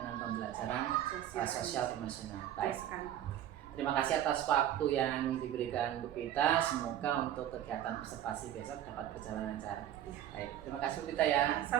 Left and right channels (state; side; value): quieter; left; 11.5 dB